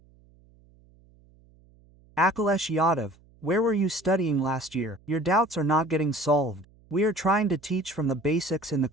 Akhilesh Yadav, where were you studying last year? Your doubts are not getting solved. We are trying to teach from the basics in the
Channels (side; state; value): right; noise; hum, 29 dB below the sound